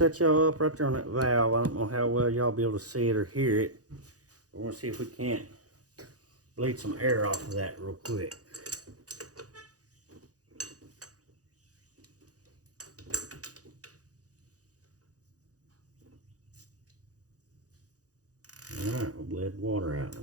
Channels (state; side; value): late; left; 0.67 ms